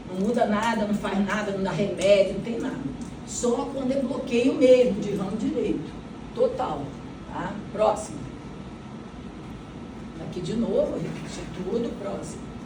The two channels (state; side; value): identical; both; correlation 1.00